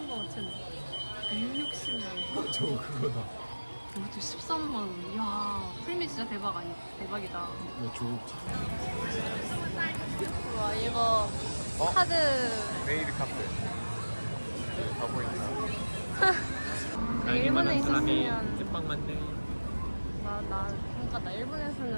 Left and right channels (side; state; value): both; inverted; correlation -1.00